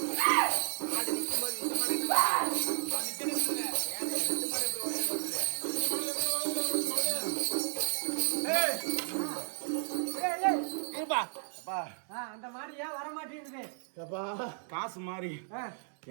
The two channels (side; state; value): left; silent; 56 dB below the other